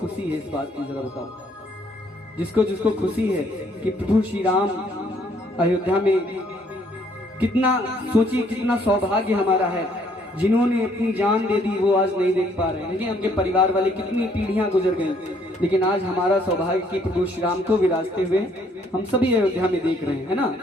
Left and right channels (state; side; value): normal; both; correlation 0.66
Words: है इस बात की, जरा बताओ। जिसको जिसको खुशी है कि प्रभु श्री राम अयोध्या में, कितना सोचिए कितना सौभाग्य हमारा है। जिन्होंने अपनी जान दे दी वो आज नहीं देख पा रहे हैं। देखिए हमके परिवार वाले कितनी पीढ़ियां गुजर गई, लेकिन आज हमारा सौभाग्य कि प्रभु श्री राम को विराजते हुए हम सभी अयोध्या में देख रहे हैं, है ना।